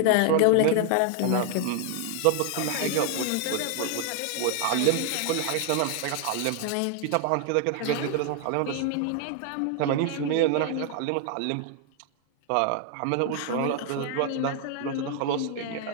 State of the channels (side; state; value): both; different; correlation 0.00